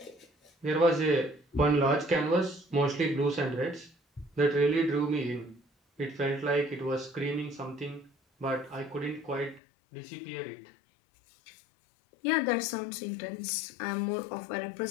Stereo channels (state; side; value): drops out; right; at 9.6 s